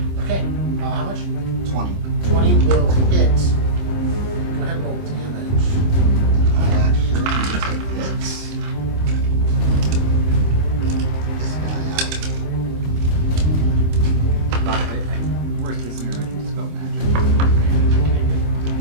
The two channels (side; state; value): left; late; 26 ms